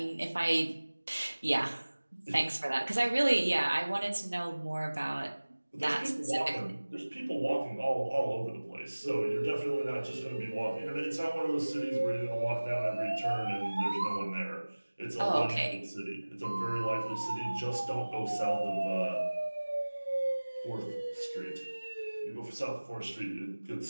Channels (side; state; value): both; inverted; correlation -1.00